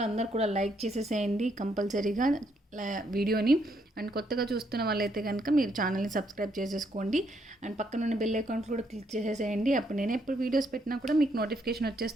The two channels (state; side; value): normal; both; correlation 0.73